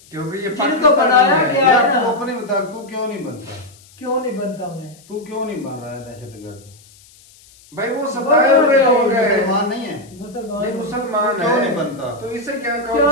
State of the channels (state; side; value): noise; left; hiss, 26 dB below the sound